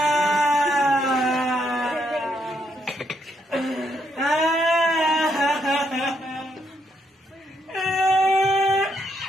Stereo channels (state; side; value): normal; both; correlation 0.75